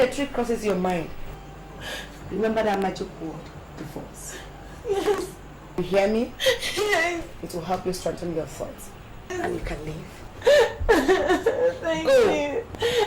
a trick crosses your mind, remember that magic word, divorce. Yes. You hear me? Yes. It will help you strengthen your thoughts. And you can leave. Thank you.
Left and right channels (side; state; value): both; identical; correlation 1.00